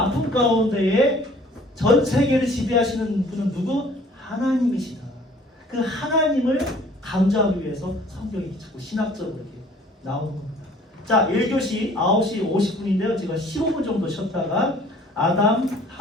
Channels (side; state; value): both; normal; correlation 0.53